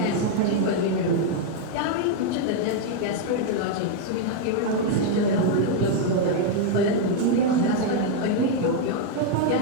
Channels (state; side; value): different; both; correlation 0.00